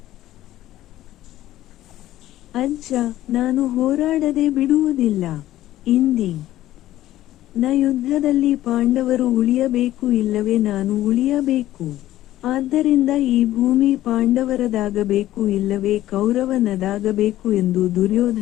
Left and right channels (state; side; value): quieter; right; 14.3 dB